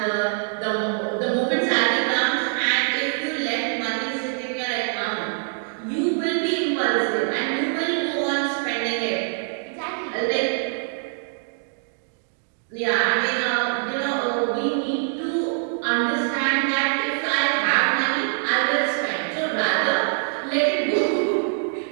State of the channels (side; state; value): left; silent; 63 dB below the other